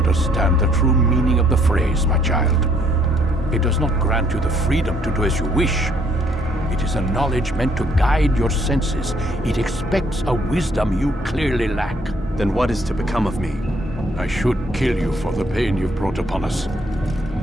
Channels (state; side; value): normal; both; correlation 0.66